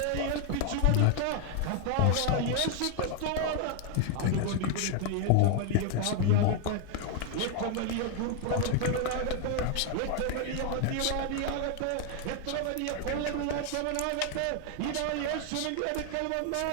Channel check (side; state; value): both; different; correlation 0.01